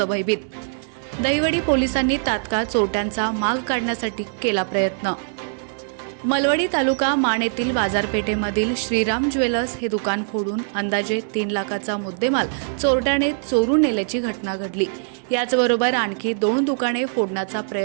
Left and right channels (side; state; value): left; silent; digital silence